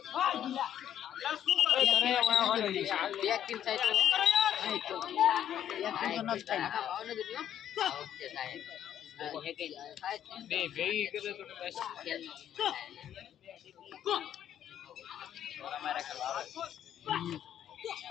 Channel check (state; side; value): quieter; right; 10.4 dB